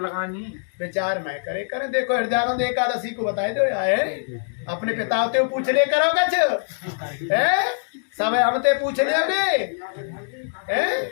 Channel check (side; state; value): right; silent; digital silence